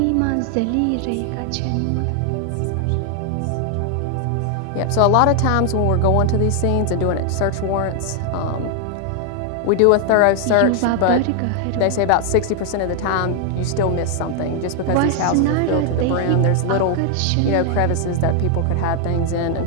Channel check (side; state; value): both; different; correlation 0.00